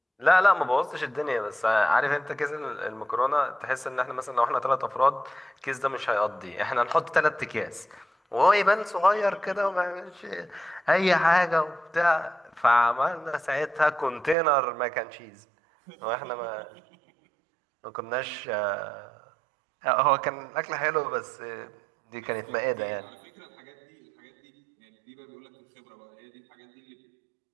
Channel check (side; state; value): left; drops out; at 14.4 s